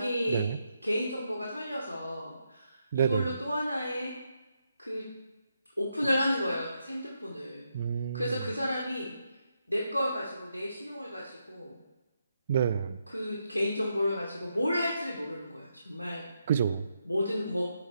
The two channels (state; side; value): inverted; both; correlation -0.81